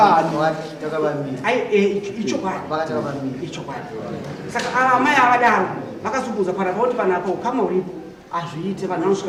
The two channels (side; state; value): both; identical; correlation 1.00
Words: pamiri. Icho kwani. Wakataka pamiri. Icho kwani. Saka amai avadaro vakazubudza kuti panapo ukama uripo azviite vanhu